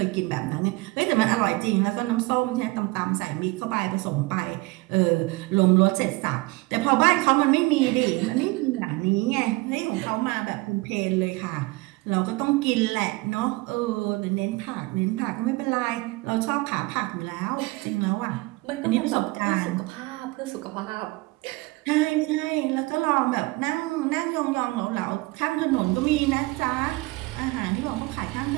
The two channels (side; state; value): left; quieter; 22.9 dB